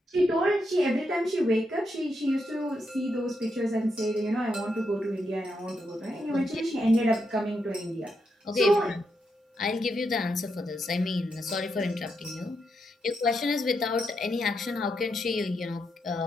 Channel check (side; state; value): both; normal; correlation 0.82